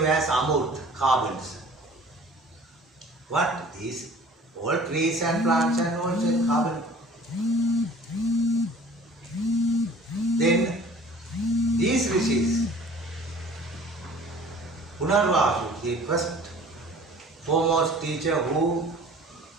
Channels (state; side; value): normal; both; correlation 0.48